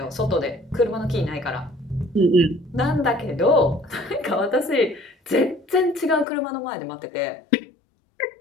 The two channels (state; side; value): drops out; right; at 6.2 s